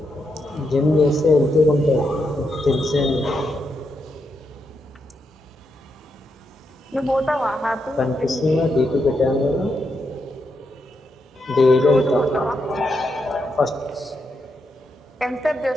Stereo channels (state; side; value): normal; both; correlation 0.83